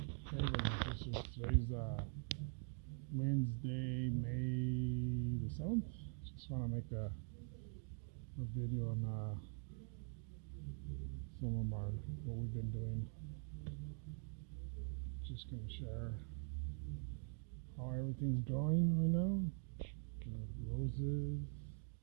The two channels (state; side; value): quieter; left; 39.6 dB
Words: brothers and sisters. Today's Wednesday, May the 7th. Just want to make a video on some of what we've been doing. Just going to share how everything's growing right now. Roses.